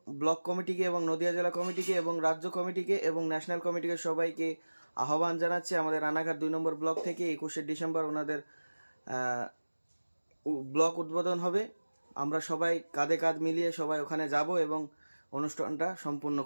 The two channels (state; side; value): inverted; both; correlation -1.00